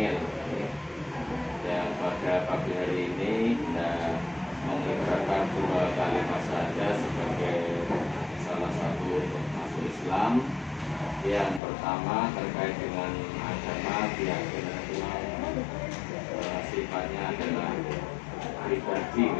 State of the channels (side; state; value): right; drops out; at 11.6 s